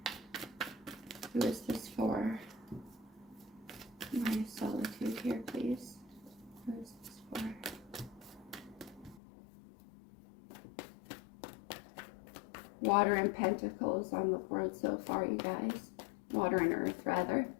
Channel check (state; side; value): drops out; right; at 9.2 s